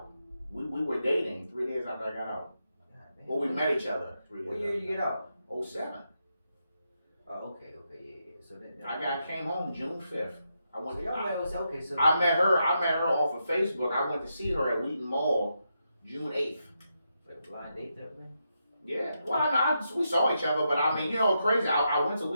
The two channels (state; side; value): inverted; both; correlation -0.84